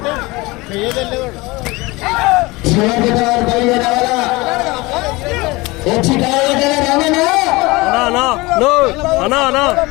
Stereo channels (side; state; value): right; quieter; 22.6 dB